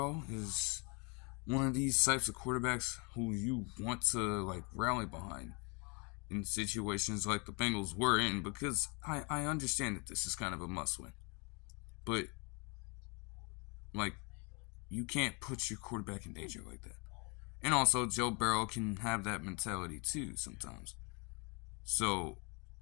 is one of these types of quarterbacks who you want to, like, rally behind in situations like the Bengals were in, because I understand that this is kind of a must-win. But, like, you can't put your quarterback in danger like that. And also, Joe Burrow can have that mentality too sometimes. So,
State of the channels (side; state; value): right; quieter; 32.2 dB